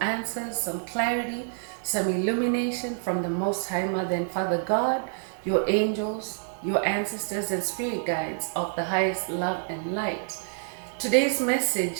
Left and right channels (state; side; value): silent; left; 60 dB below the other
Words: answers, some clarity, some illumination from the Most High Mother and Father God, your angels, your ancestors, and spirit guides of the highest love and light. Today's